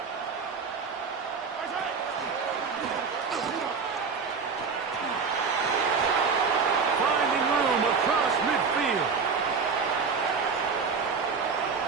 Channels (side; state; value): left; quieter; 5.3 dB